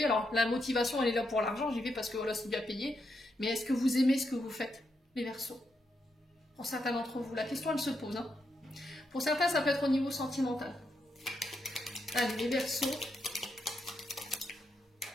Alors, la motivation, elle est là pour l'argent, j'y vais parce que voilà, c'est bien payé. Mais est-ce que vous aimez ce que vous faites, les Verseaux? Pour certains d'entre vous, la question, elle se pose. Hein. Pour certains, ça peut être au niveau sentimental. Allez, les Verseaux.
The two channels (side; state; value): both; normal; correlation 0.82